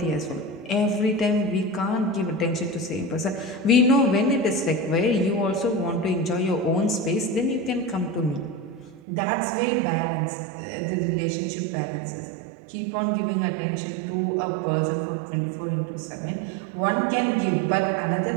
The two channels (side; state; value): left; drops out; at 9.0 s